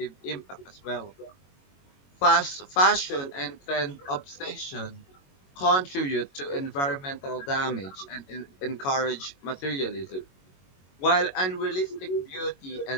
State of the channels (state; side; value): late; right; 22 ms